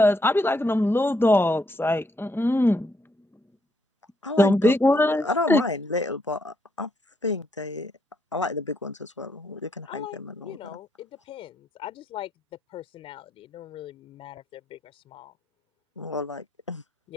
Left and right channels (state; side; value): normal; both; correlation 0.75